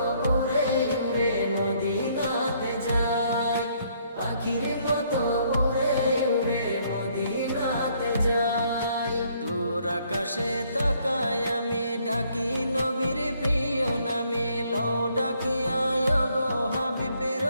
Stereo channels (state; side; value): inverted; both; correlation -0.67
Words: উড়ে উড়ে মদিনাতে যাই। পাখির মতো উড়ে উড়ে মদিনাতে যাই। দূর আকাশে তাকাই আমি, ডাকি নবীর প্রিয় নামে। লও ডাকিয়া গো হাবিব,